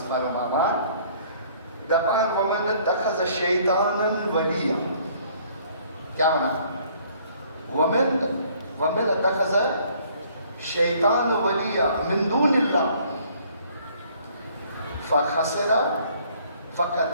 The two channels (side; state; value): both; inverted; correlation -0.59